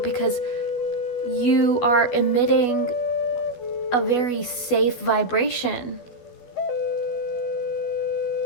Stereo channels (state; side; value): late; right; 12 ms